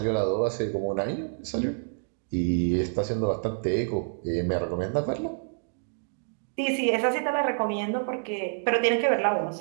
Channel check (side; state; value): left; silent; digital silence